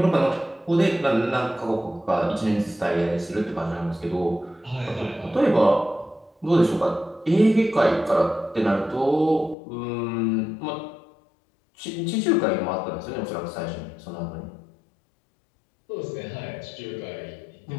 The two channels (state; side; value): drops out; right; at 9.6 s